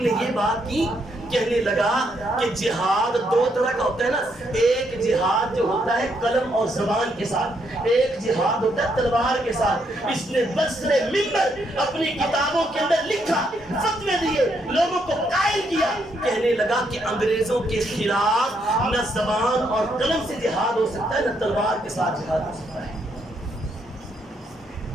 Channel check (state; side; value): normal; both; correlation 0.75